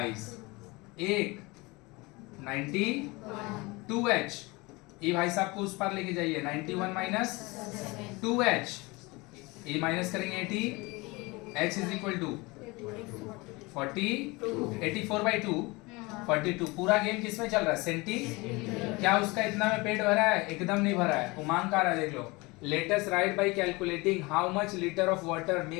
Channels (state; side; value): quieter; right; 24.4 dB